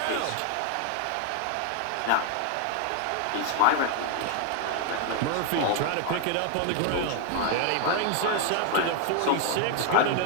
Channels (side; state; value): both; different; correlation 0.00